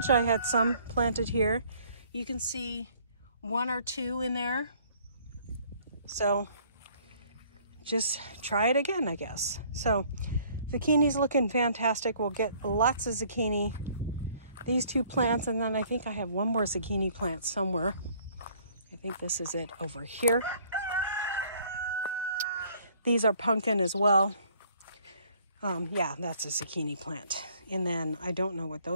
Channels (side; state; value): both; inverted; correlation -0.59